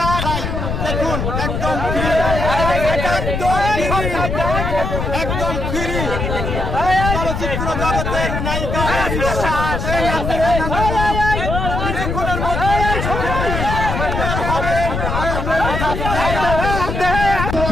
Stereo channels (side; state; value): left; noise; rumble, 2 dB below the sound